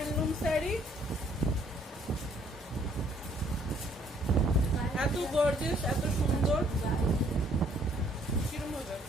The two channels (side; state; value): both; normal; correlation 0.63